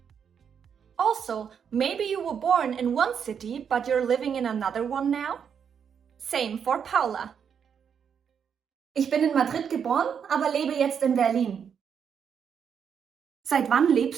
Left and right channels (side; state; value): left; quieter; 7.4 dB